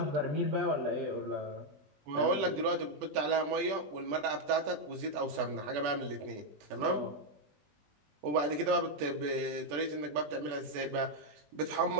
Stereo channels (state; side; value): late; left; 20 ms